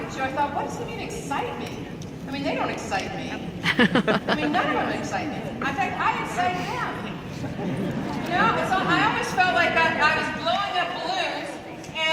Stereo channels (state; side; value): identical; both; correlation 1.00